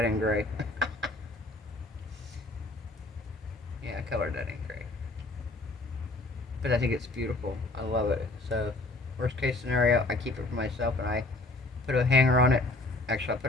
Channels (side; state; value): right; quieter; 3.1 dB